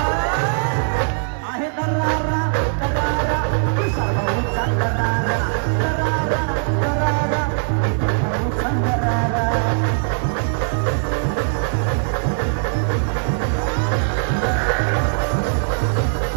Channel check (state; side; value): silent; left; digital silence